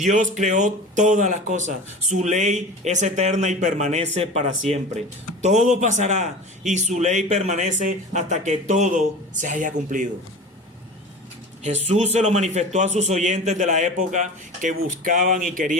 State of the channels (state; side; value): normal; both; correlation 0.34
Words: creó todas las cosas. Su ley es eterna y permanece para siempre. Todo pasará y su ley permanece hasta que todo se haya cumplido. Jesús se lo manifestó a sus oyentes de la época que buscaban y